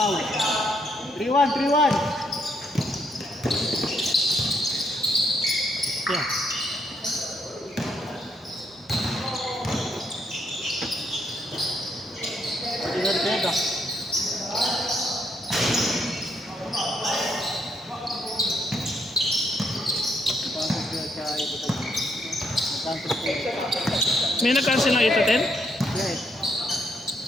3-1. Yeah. Pwede. May nag-cancel ng 8 to 10?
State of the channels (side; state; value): both; normal; correlation 0.74